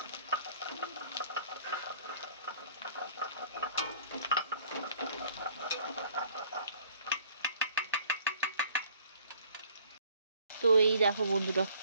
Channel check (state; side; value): inverted; both; correlation -0.57